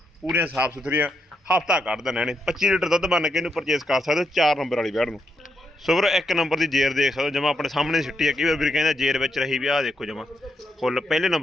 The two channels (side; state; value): both; normal; correlation 0.81